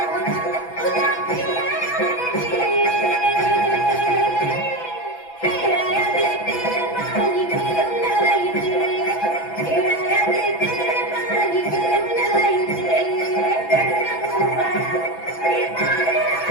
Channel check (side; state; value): right; late; 6.0 ms